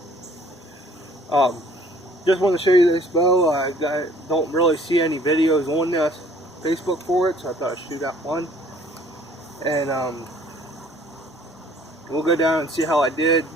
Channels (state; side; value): normal; both; correlation 0.57